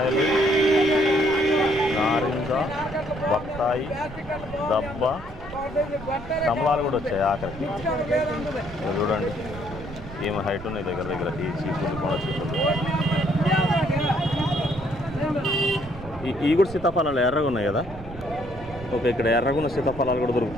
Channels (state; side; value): noise; right; rumble, 14 dB below the sound